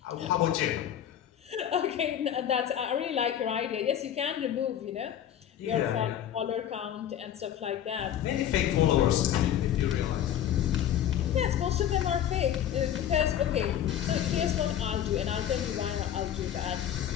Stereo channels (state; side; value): quieter; right; 10.4 dB